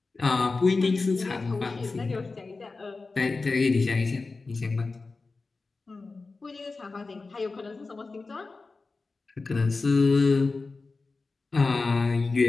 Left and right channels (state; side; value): quieter; right; 3.9 dB